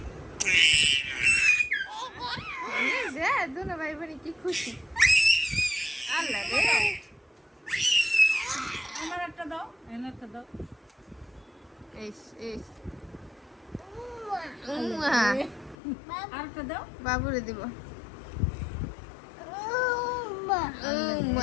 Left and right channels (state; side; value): drops out; right; at 15.8 s